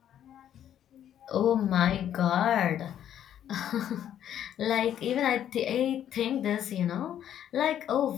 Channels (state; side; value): quieter; right; 10.4 dB